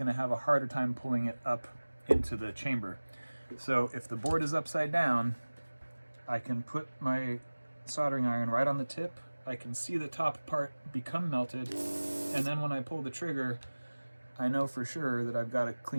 to have a harder time pulling it up into the chamber. So if the board is upside down, I can put my soldering iron right on the tip. I can see the top part become melted, and then when I pull the trigger, I know for sure that I've got a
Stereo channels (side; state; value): both; inverted; correlation -1.00